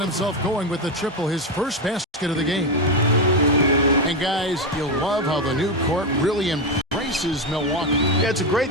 himself going with the triple, his first basket of the game. And guys, you'll love how the new court really embraces Milwaukee. Yeah, it's a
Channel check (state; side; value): normal; both; correlation 0.10